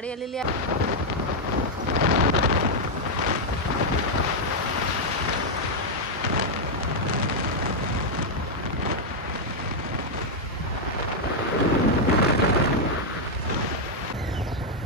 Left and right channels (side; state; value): both; normal; correlation -0.01